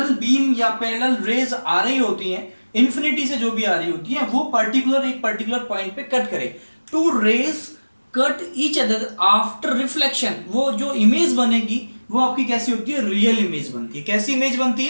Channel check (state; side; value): inverted; both; correlation -1.00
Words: बीम या पैरेलल रेज आ रही होती हैं, इन्फिनिटी से जो भी आ रही होती है, वो एक पर्टिकुलर पॉइंट पे कट करे। Two rays cut each other after reflection, वो जो इमेज बनेगी वो आपकी कैसी होती है? रियल इमेज बनती है। कैसी इमेज बनती